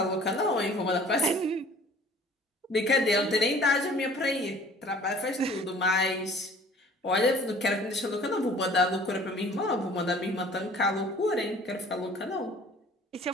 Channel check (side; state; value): both; normal; correlation 0.50